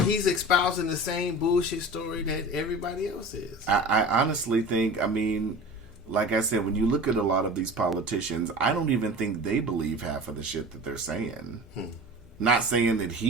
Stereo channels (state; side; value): normal; both; correlation 0.36